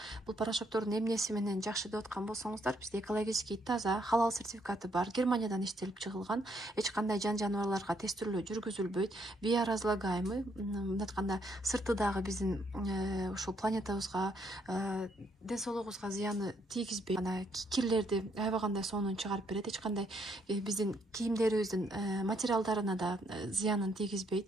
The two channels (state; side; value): normal; both; correlation 0.72